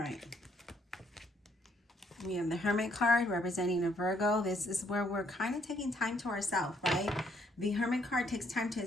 right. We have the Hermit card representing a Virgo. This is where we're kind of taking time to ourselves, right? The Hermit card takes time to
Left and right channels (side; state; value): both; normal; correlation 0.69